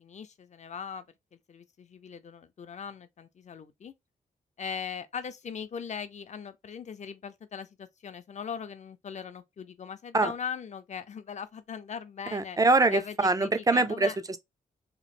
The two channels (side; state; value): both; normal; correlation 0.39